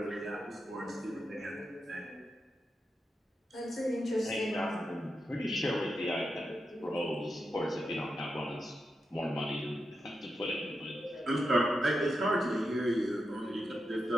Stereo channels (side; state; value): both; normal; correlation 0.87